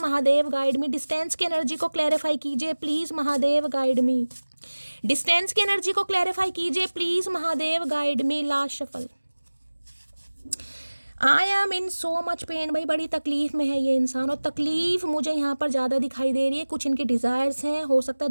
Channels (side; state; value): both; inverted; correlation -1.00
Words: guide me. Distance की एनर्जी को क्लैरिफाई कीजिए please Mahadev guide me. Distance की एनर्जी को क्लैरिफाई कीजिए please Mahadev guide me. Last shuffle. I am in so much pain. भाई बड़ी तकलीफ में है ये इंसान, और तकलीफ मुझे यहाँ पर ज़्यादा दिखाई दे रही है। कुछ इनके डिज़ायर्स हैं, हो सकता है